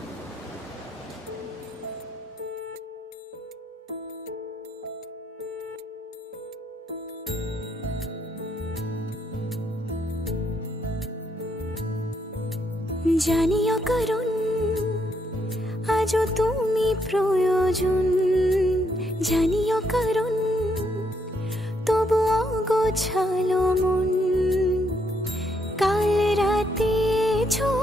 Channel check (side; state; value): both; normal; correlation 0.75